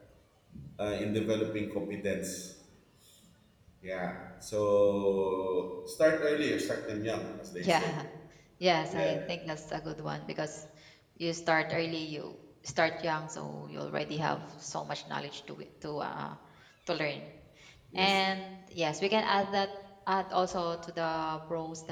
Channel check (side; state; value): both; identical; correlation 1.00